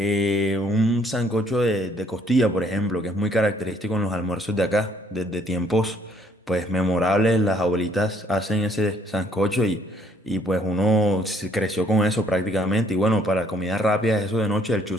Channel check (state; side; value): normal; both; correlation 0.65